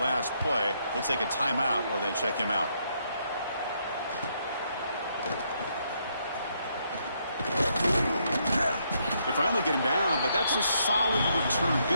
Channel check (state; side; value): inverted; both; correlation -0.75